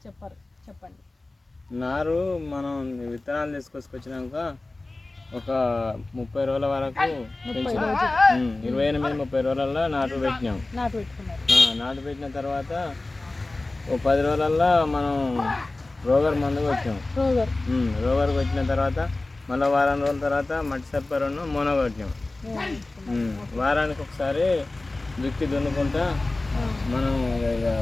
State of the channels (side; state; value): right; quieter; 3.0 dB